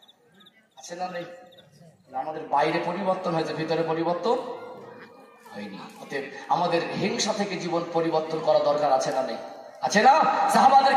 আছে না নেই? আমাদের বাইরে পরিবর্তন হয়েছে, ভিতরে পরিবর্তন হয়নি। অতএব আমাদের হিংসা থেকে জীবন পরিবর্তন করা দরকার আছে না নেই? আছে না? সাহাবাদের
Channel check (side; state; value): both; identical; correlation 1.00